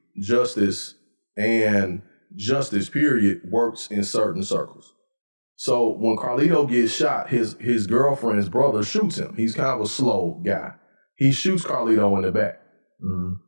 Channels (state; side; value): inverted; both; correlation -1.00